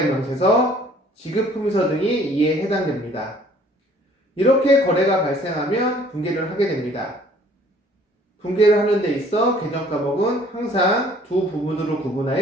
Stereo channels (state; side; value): normal; both; correlation 0.56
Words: 지급품의서 등이 이에 해당됩니다. 이렇게 거래가 발생하면 분계를 하게 됩니다. 분계를 하는 데 있어 계정과목은 항상 두 부분으로